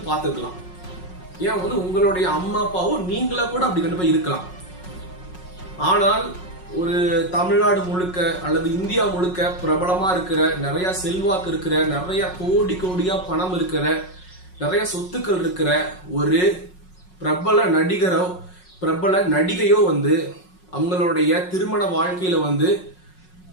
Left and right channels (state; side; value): late; right; 5.5 ms